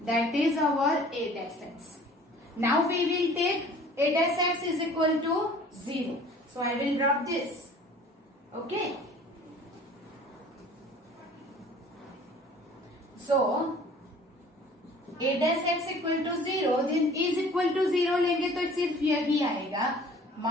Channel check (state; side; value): normal; both; correlation 0.49